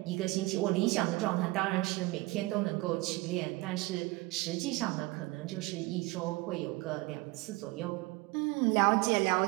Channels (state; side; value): quieter; left; 22.3 dB